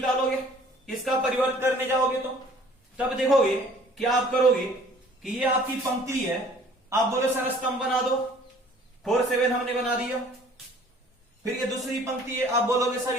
इसका परिवर्त करने जाओगे तो तब देखोगे क्या आप करोगे कि ये आपकी पंक्ति है, आप बोलो सर स्तंभ बना दो, 4 7 हमने बना दिया। फिर ये दूसरी पंक्ति है, आप बोलोगे सर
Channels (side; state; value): both; normal; correlation 0.53